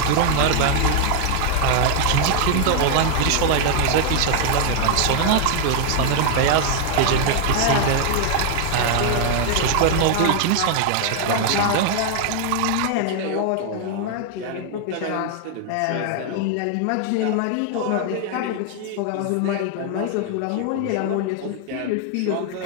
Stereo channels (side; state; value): both; different; correlation 0.00